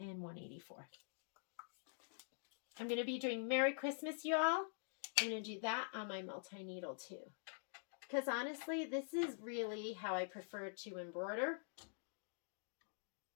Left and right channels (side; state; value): right; silent; digital silence